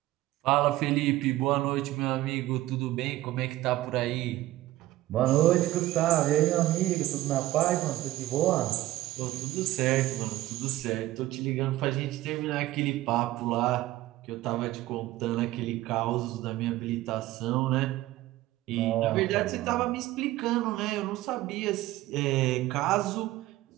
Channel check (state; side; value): quieter; left; 16.2 dB